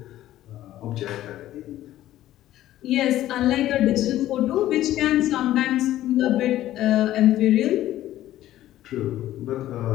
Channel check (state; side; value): quieter; right; 13.8 dB